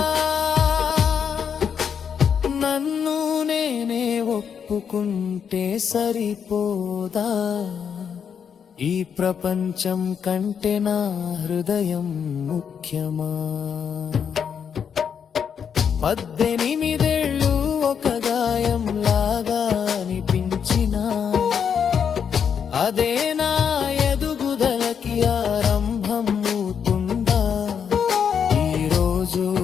నన్ను నేనే ఒప్పుకుంటే సరిపోదా. ఈ ప్రపంచం కంటే నా హృదయం ముఖ్యమా. 18 ఒక గాయం లాగా అనిపించినా, అదే నా ఎదుగుదలకి ఆరంభం అవుతుందా. ఈరోజు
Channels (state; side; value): quieter; right; 7.4 dB